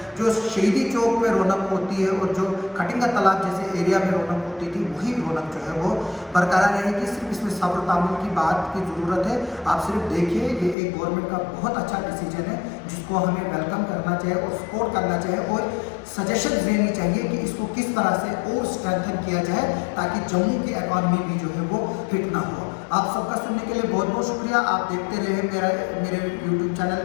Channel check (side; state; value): right; drops out; at 10.8 s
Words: जो शहीदी चौक पे रौनक होती है और जो खटिंगा तालाब जैसे एरिया में रौनक होती थी, वही रौनक जो है वो बरकरार रहेगी। सिर्फ इसमें सब्र तामुल की बात की ज़रूरत है। आप सिर्फ देखिए, ये एक गवर्नमेंट का बहुत अच्छा डिसीजन है जिसको हमें वेलकम करना चाहिए और सपोर्ट करना चाहिए और सजेशन देनी चाहिए कि इसको किस तरह से और स्ट्रेंथन किया जाए ताकि जम्मू की इकॉनमी भी जो है वो हिट ना हो। आप सबका सुनने के लिए बहुत बहुत शुक्रिया। आप देखते रहे मेरे यूट्यूब चैनल